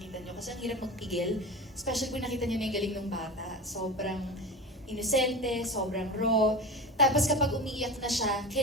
nyo. Kasi ang hirap magpigil, especially kung nakita nyo na yung galing ng bata. Sobrang inosente, sobrang raw. Tapos kapag umiiyak na siya,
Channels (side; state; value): both; normal; correlation 0.28